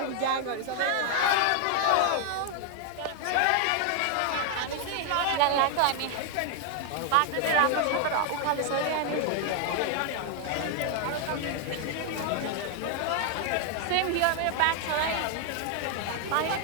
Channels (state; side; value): different; both; correlation 0.00